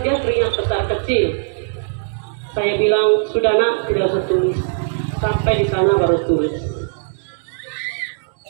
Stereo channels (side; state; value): left; silent; digital silence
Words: dia teringat besar kecil. Saya bilang, "Sudah nak, tidak usah tulis. Sampai di sana baru tulis."